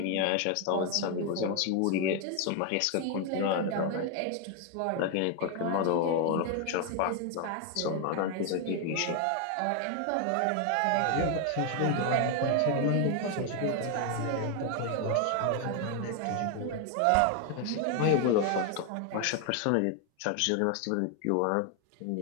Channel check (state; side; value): different; both; correlation 0.01